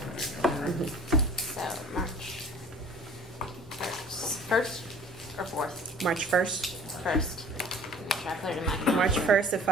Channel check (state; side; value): normal; both; correlation 0.48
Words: anything, all right? So March 1st or 4th? March 1st. 1st. Make sure I put it in my. March 1st at